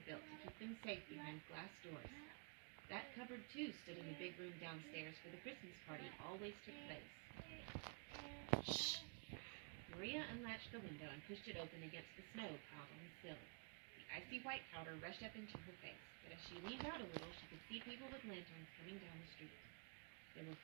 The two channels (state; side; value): quieter; left; 36.4 dB